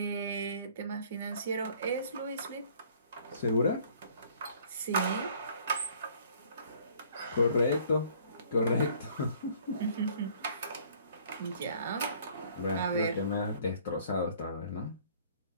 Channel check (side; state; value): both; inverted; correlation -0.57